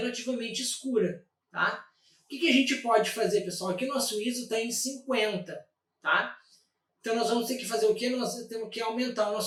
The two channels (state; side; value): identical; both; correlation 1.00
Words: escura, tá? O que a gente pode fazer, pessoal? Aqui o nosso ISO está em 50, tá? Então nós vamos ter que fazer o quê? Nós temos que aumentar o